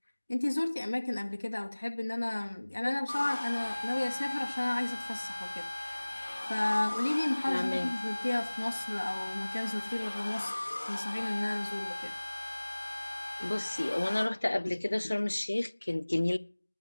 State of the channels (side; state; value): both; inverted; correlation -1.00